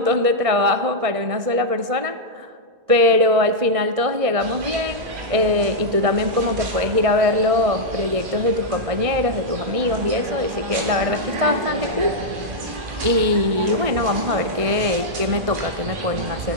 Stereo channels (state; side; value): late; left; 1.6 ms